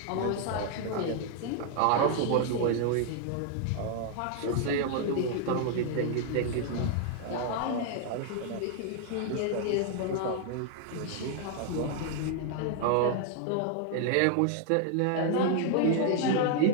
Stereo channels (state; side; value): different; both; correlation 0.00